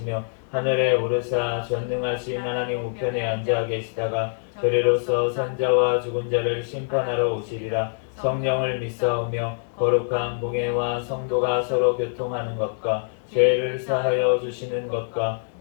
하늘에 오르사 전능하신 하나님 우편에 앉아 계시다가 저리로서 산자와 죽은 자를 심판하러 오시리라. 성령을 믿사오며 거룩한 공예와 성도가 서로 교통하는 것과 죄를 사하여 주시는 것과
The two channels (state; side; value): silent; right; digital silence